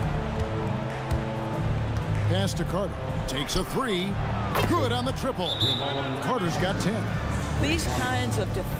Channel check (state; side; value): identical; both; correlation 1.00